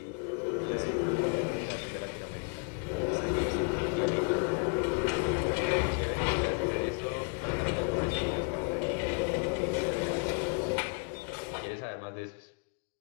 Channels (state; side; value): quieter; right; 39.1 dB